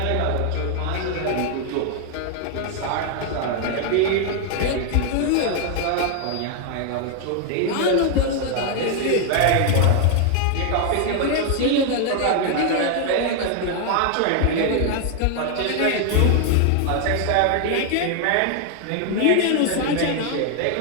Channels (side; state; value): both; different; correlation 0.00